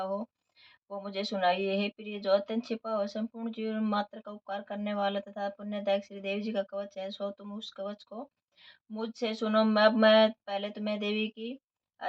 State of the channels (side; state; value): both; identical; correlation 1.00